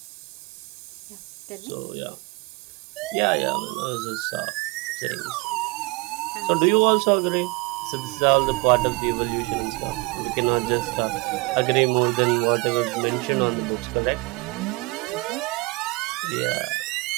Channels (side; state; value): left; quieter; 25.6 dB